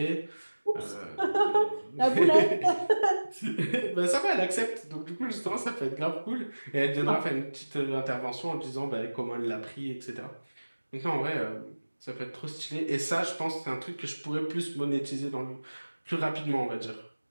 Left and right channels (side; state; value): both; inverted; correlation -1.00